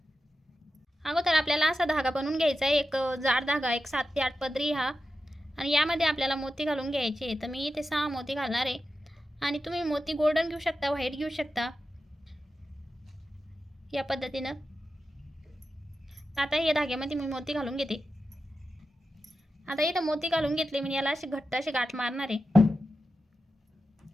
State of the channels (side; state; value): both; normal; correlation 0.91